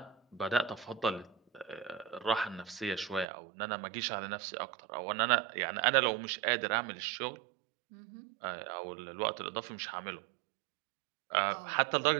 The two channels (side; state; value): left; drops out; at 3.2 s